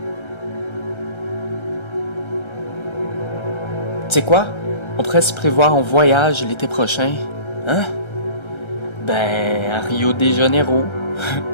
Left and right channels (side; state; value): right; late; 1.3 ms